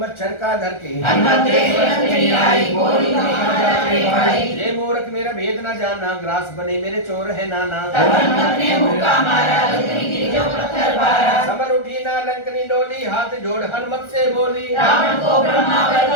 का धर के। हनुमत देख नंदनी आई, बोली तुम्हें भाई। ये मूर्ख मूर्ख मेरा भेद न जाना, ग्रास बने मेरे चोर है नाना। तब हनुमत ने मुक्का मारा, लंकनी गिरी जो पत्थर बारा। समर उठी ना लंकनी डोली, हाथ जोड़ हनुमत से बोली। रावण को ब्रह्मा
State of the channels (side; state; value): right; late; 1.4 ms